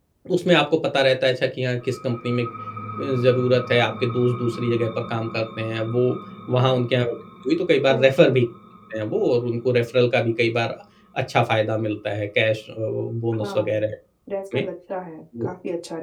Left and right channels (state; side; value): identical; both; correlation 1.00